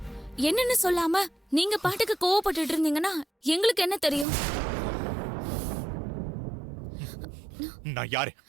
என்னன்னு சொல்லாம நீங்க பாட்டுக்கு கோவப்பட்டுட்டு இருந்தீங்கன்னா எங்களுக்கு என்ன தெரியும்? நான் யாரு?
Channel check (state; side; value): drops out; left; at 4.2 s